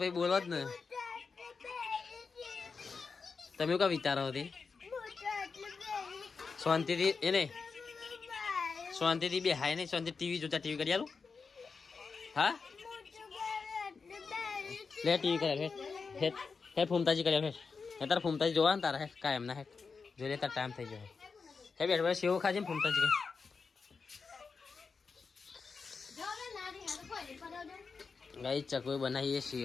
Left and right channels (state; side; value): quieter; right; 5.0 dB